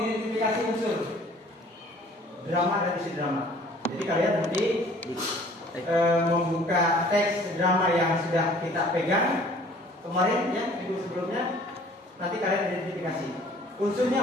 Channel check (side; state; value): both; normal; correlation 0.53